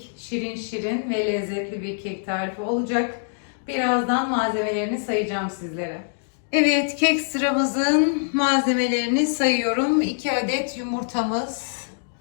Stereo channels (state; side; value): silent; right; digital silence